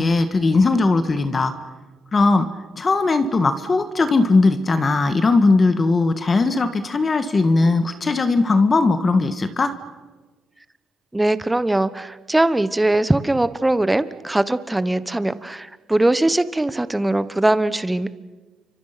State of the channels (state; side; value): normal; both; correlation 0.93